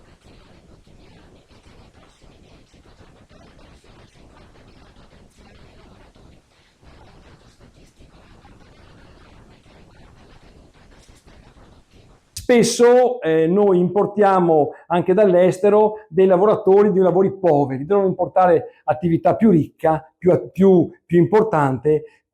negli ultimi anni e che nei prossimi 10 potrebbe perdere fino a 50.000 potenziali lavoratori. Non è un dato statistico, è un campanello d'allarme che riguarda la tenuta del sistema produttivo. Spesso noi importiamo anche dall'estero dei lavoratori di lavori poveri, devono importare attività più ricca, più importante,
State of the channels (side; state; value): both; identical; correlation 1.00